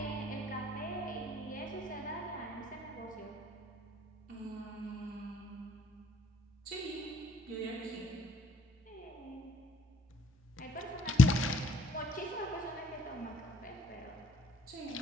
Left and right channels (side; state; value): both; normal; correlation 0.62